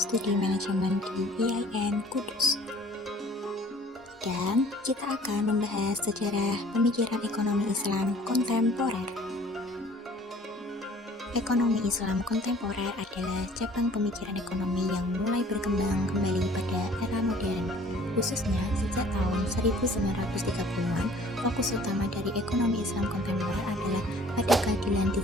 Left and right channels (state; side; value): normal; both; correlation 0.52